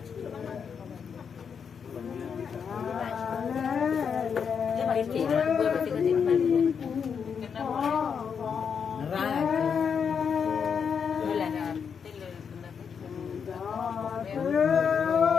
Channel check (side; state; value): right; quieter; 6.7 dB